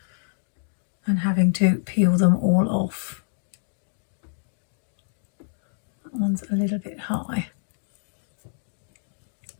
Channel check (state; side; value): silent; right; digital silence